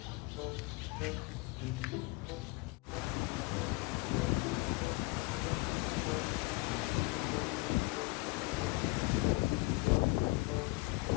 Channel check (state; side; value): quieter; right; 24.0 dB